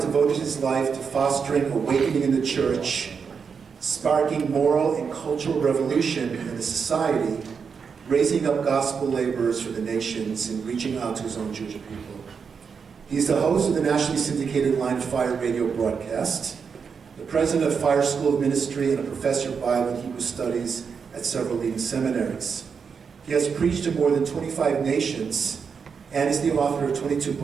devoted his life to fostering awakening in the church, sparking moral and cultural revolution in the society, raising up gospel laborers for the nations, and reaching out to his own Jewish people. He's the host of the nationally syndicated Line of Fire radio broadcast, the president of Fire School of Ministry, and a professor of Bible and Hebrew Studies at several leading seminaries. He has preached to more than 25 nations and is the author of 22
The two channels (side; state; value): left; quieter; 6.0 dB